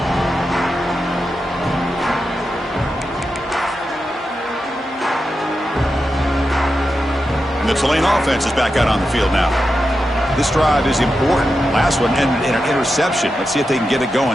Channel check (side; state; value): both; normal; correlation 0.89